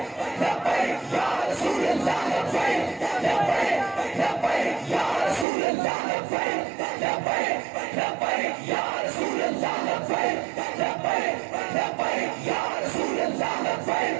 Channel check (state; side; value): drops out; left; at 5.5 s